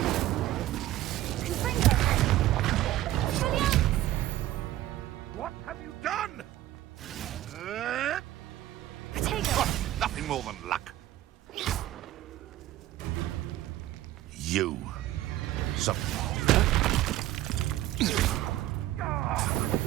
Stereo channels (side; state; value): left; quieter; 14.7 dB